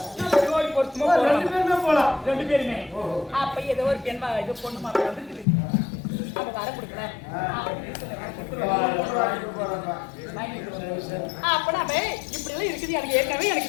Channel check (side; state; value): right; drops out; at 5.5 s